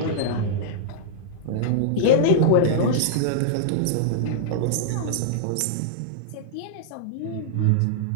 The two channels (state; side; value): different; both; correlation -0.02